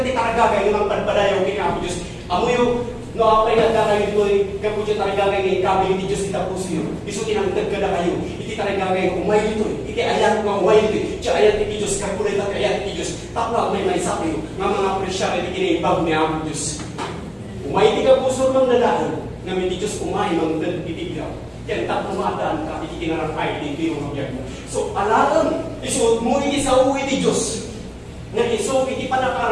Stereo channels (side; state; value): both; identical; correlation 1.00